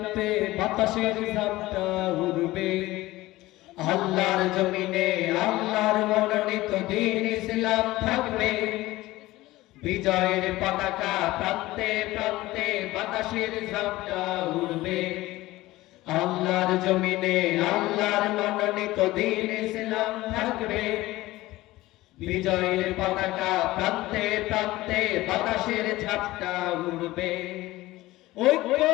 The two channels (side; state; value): right; quieter; 18.0 dB